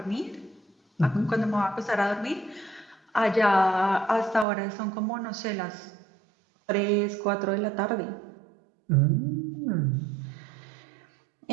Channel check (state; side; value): drops out; left; at 4.5 s